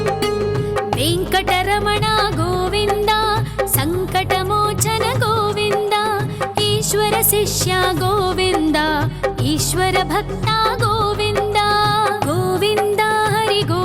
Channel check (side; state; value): both; identical; correlation 1.00